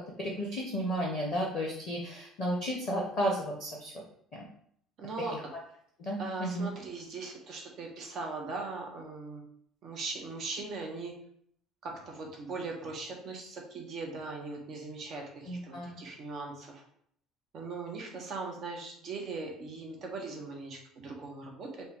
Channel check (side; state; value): both; normal; correlation 0.54